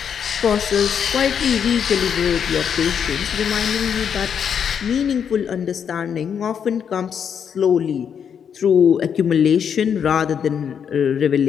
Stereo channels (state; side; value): quieter; right; 7.7 dB